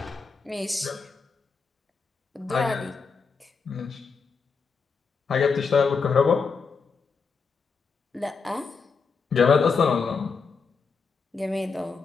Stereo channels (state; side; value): quieter; right; 5.2 dB